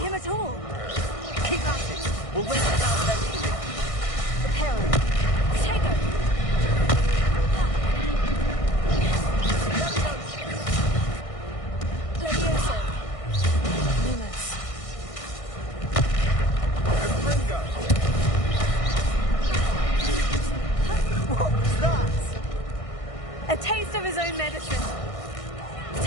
at all. Keep at it. We'll win without their healing. Reparo. Potato. Levioso. Lumos. Ringo. What was that? A taste of his own medicine.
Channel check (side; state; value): right; late; 1.6 ms